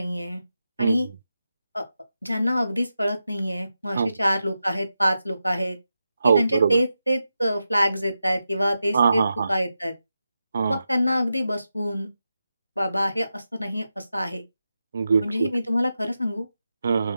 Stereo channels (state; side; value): inverted; both; correlation -0.90